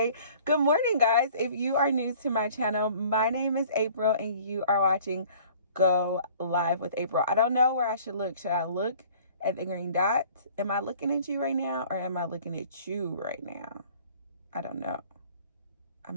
Good morning guys. If you are new to my channel, my name is April and you are watching Go Live with April. I don't know where I should look. Should I look at the green dot? Am I looking at you right now or am I looking at you right now? I don't know.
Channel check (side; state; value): both; inverted; correlation -0.51